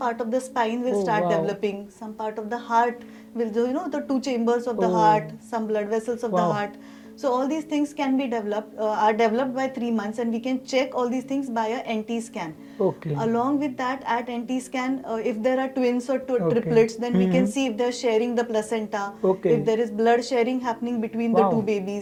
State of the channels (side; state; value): both; identical; correlation 1.00